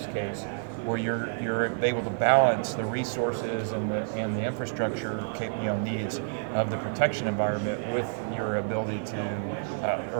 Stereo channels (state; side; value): silent; left; digital silence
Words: case where you're able to balance the resources and the infrastructure needs of the protection environment with your ability to,